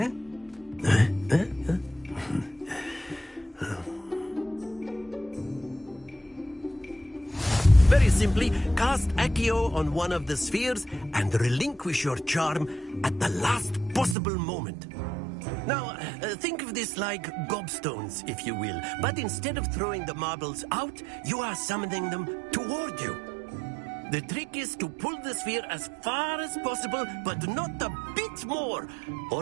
Very simply, cast Accio on one of the spheres and relinquish your charm at the last possible moment. Now, think of this like gobstones, if you will, but instead of throwing the marbles out, you are summoning them toward you. The trick is to pull the sphere as far as possible, but not a bit more,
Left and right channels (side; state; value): left; drops out; at 14.2 s